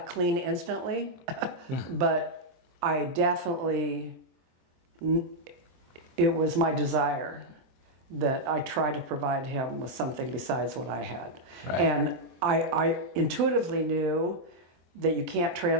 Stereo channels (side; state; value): left; late; 23 ms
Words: clean instantly, but I definitely, it was my desire that I try to provide him with something besides what I had. Right. And I intuitively knew that you can't